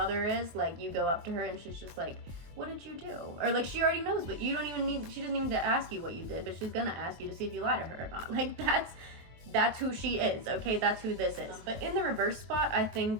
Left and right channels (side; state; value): left; late; 23 ms